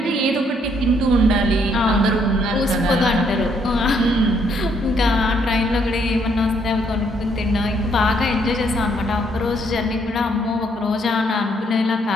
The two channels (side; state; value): both; normal; correlation 0.70